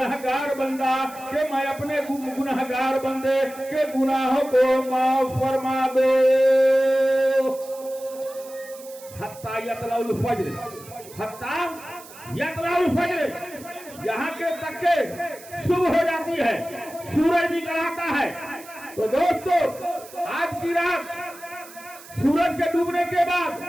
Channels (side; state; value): right; noise; hiss, 19 dB below the sound